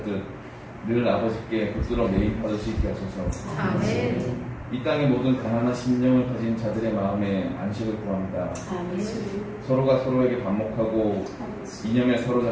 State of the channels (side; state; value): both; identical; correlation 1.00